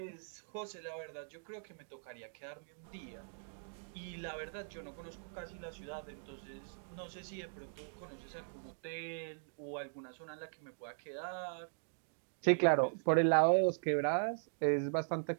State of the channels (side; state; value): left; silent; digital silence